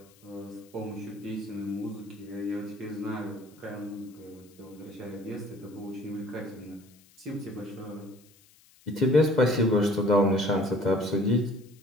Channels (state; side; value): noise; left; hiss, 28 dB below the sound